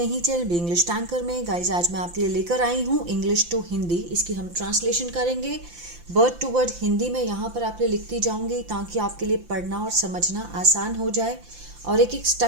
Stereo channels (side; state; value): left; late; 5.8 ms